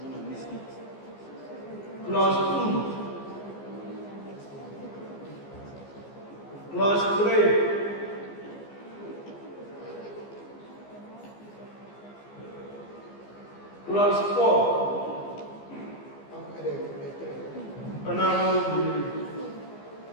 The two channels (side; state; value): right; late; 15 ms